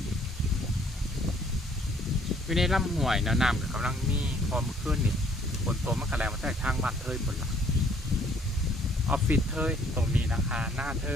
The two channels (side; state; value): both; normal; correlation 0.62